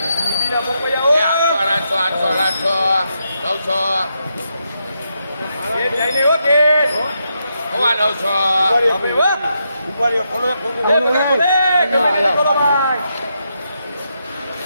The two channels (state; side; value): inverted; both; correlation -0.82